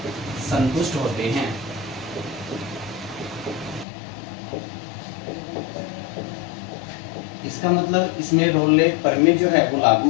संतुष्ट होते हैं। इसका मतलब इसमें रोले प्रमेय जो है वो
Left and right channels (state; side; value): drops out; right; at 3.9 s